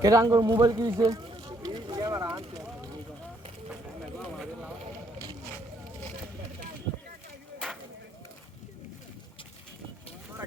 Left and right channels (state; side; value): normal; both; correlation 0.70